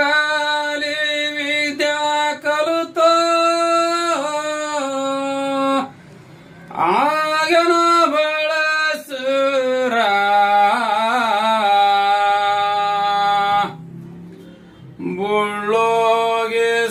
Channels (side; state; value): both; identical; correlation 1.00